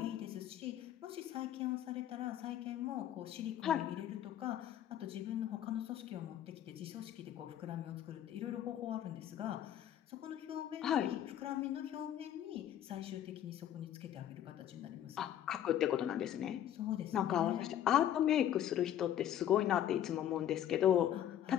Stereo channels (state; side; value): quieter; right; 11.0 dB